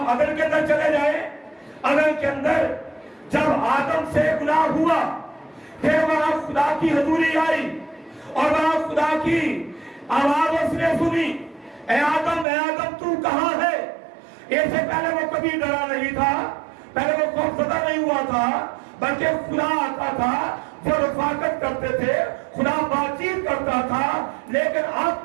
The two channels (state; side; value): drops out; left; at 12.5 s